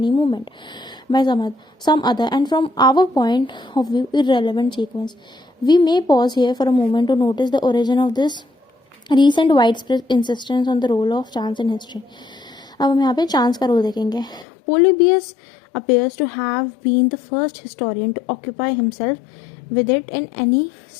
moment by some other and from our point of view irrelevant sequence. We may pause here for a moment to notice the origin of this recent widespread insistence on the role of chance in history. अब हम यहाँ पे chance का role देखेंगे. Polybius appears to have been the first historian to occupy himself with it in any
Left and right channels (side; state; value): right; drops out; at 14.5 s